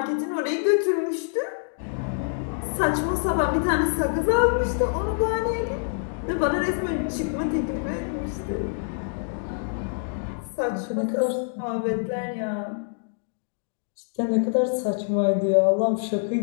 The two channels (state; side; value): silent; right; digital silence